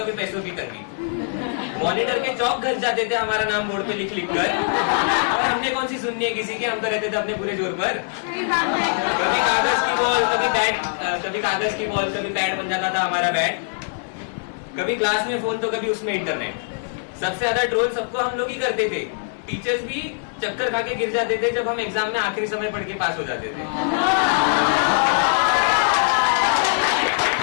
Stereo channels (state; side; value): silent; right; digital silence